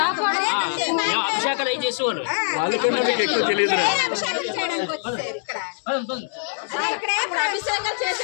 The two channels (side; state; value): right; silent; digital silence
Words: అభిషేకాలు అవి చేసేవాళ్ళు. వాళ్ళకన్నా మీకు ఎక్కువ తెలియదు.